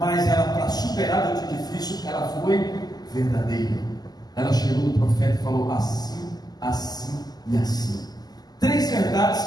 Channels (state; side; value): late; right; 0.20 ms